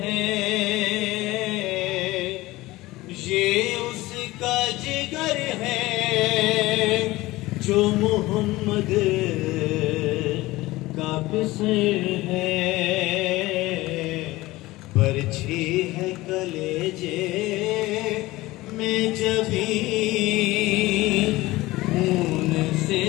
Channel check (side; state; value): right; quieter; 19.0 dB